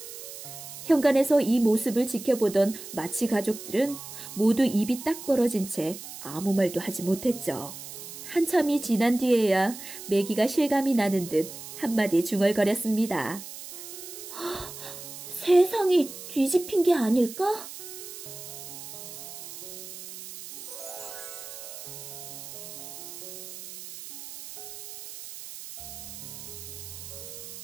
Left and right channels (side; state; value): right; noise; hiss, 12 dB below the sound